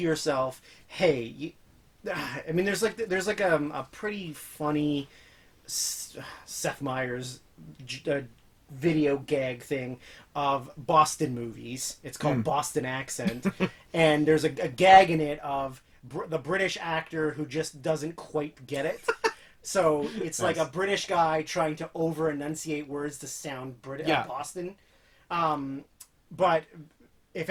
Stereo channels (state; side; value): identical; both; correlation 1.00